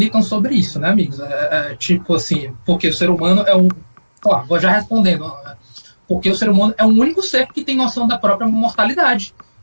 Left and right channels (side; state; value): both; inverted; correlation -1.00